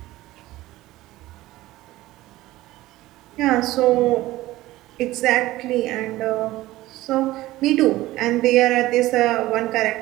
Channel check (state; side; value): quieter; left; 17.0 dB